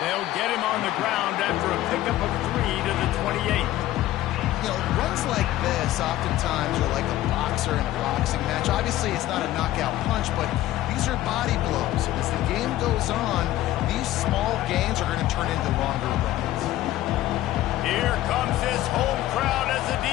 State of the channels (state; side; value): quieter; right; 14.8 dB